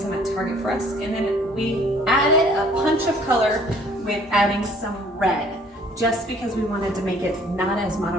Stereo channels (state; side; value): normal; both; correlation 0.57